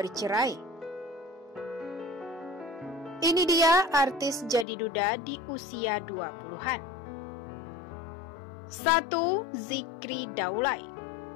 Ini dia artis jadi duda di usia 20-an. 1. Zikri Daulay.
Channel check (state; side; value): drops out; right; at 4.7 s